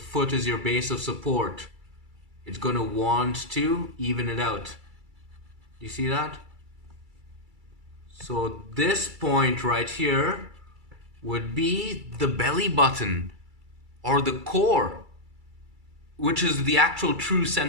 is your base of support. It's gonna want to even it out. Do you see that? So this point right here would be the belly button or the core, which is the actual true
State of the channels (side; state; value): left; late; 2.3 ms